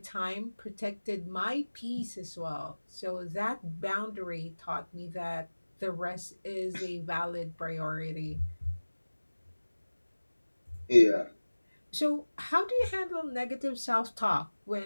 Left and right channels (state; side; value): inverted; both; correlation -1.00